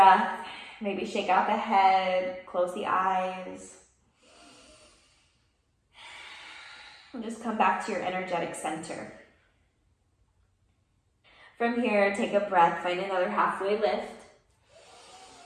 Maybe shake out the head, close the eyes. And just come back to your energetic center. From here, take a breath, find another halfway lift.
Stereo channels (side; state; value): both; identical; correlation 1.00